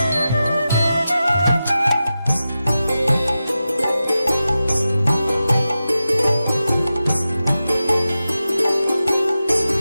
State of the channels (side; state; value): both; inverted; correlation -0.92